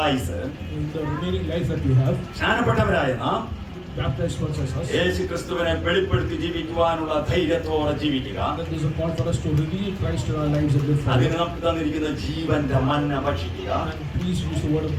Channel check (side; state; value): both; identical; correlation 1.00